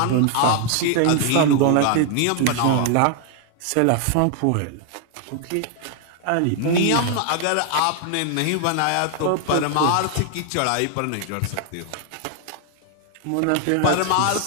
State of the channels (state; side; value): different; both; correlation 0.00